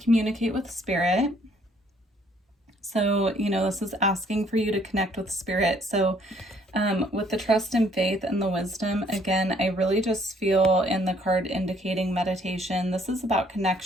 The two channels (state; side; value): normal; both; correlation 0.64